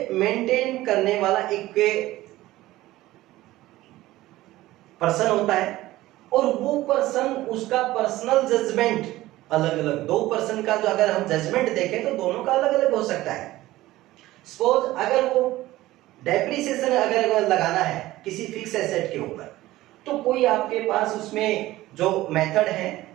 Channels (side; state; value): left; quieter; 16.8 dB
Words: मेंटेन करने वाला एक पर्सन होता है और वो पर्सन उसका पर्सनल जजमेंट अलग अलग, दो पर्सन का जो अगर हम जजमेंट देखें तो दोनों का अलग अलग हो सकता है। सपोज अगर वो डेप्रिसिएशन अगर लगाना है किसी फिक्स एसेट के ऊपर, तो कोई आपके पास उसमें जो मेथड है